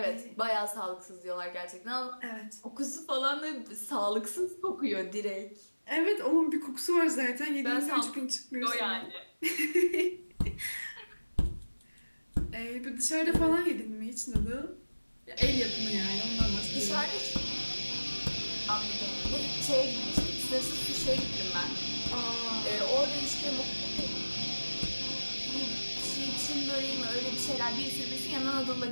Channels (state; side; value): inverted; both; correlation -1.00